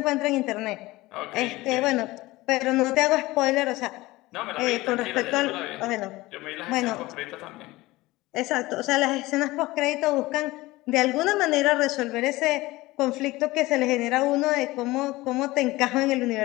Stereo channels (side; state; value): right; quieter; 19.6 dB